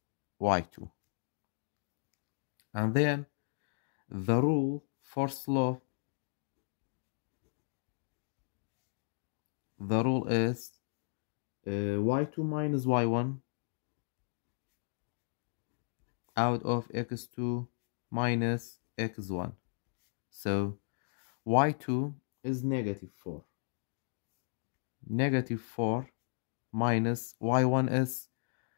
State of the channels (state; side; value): silent; right; digital silence